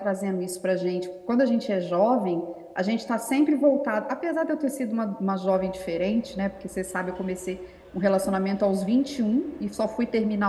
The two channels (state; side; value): identical; both; correlation 1.00